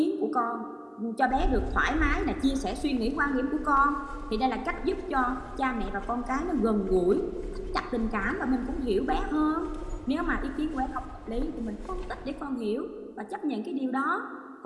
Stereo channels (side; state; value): both; identical; correlation 1.00